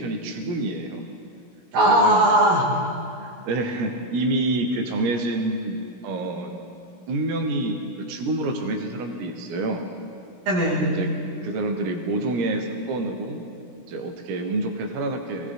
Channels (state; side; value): late; left; 17 ms